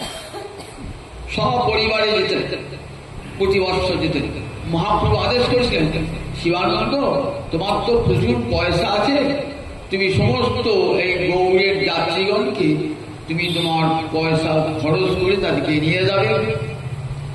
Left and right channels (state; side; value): identical; both; correlation 1.00